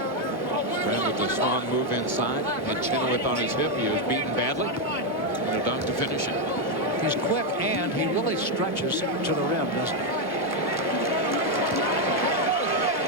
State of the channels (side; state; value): both; normal; correlation 0.03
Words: with a strong move inside. Had Chenoweth on his hip. He was beaten badly. And a dunk to finish it. He's quick, and he really stretches to the rim, doesn't he?